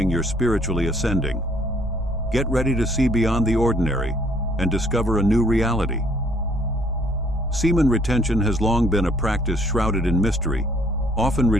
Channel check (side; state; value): both; normal; correlation 0.62